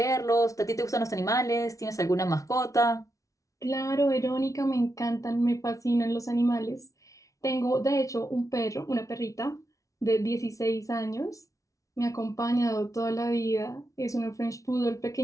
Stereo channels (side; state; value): right; late; 0.16 ms